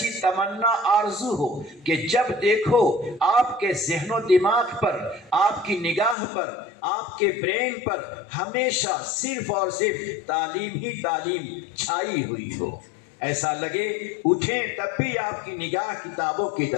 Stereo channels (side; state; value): right; drops out; at 6.2 s